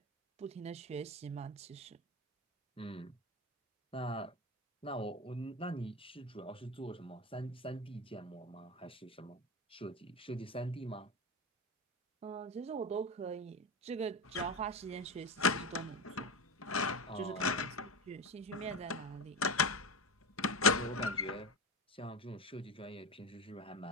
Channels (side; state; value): both; normal; correlation 0.21